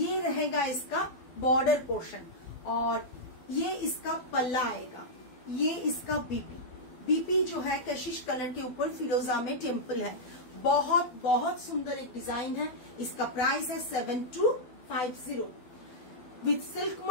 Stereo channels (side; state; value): right; late; 12 ms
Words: ये रहेगा इसका बॉर्डर पोर्शन, और ये इसका पल्ला आएगा, ये इसका बीपी बीपी जो है कशिश कलर के ऊपर फिरोजा में टेम्पल है, बहुत बहुत सुंदर एक डिजाइन है। इसका प्राइस है 7250 with silk